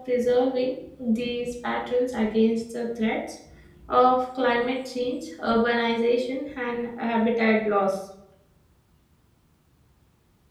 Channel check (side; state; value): both; identical; correlation 1.00